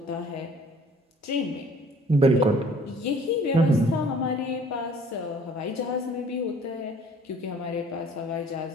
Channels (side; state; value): both; normal; correlation 0.54